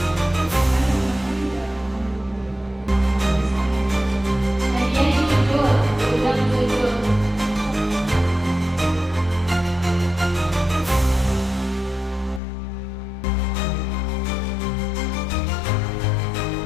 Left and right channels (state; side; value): drops out; right; at 12.4 s